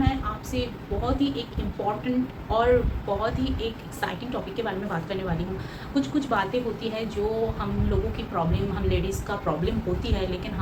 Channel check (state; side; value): identical; both; correlation 1.00